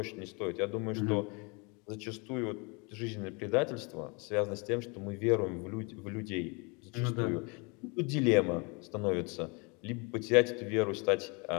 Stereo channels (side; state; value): right; quieter; 30.9 dB